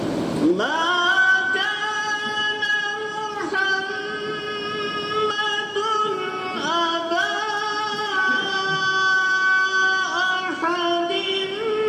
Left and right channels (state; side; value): identical; both; correlation 1.00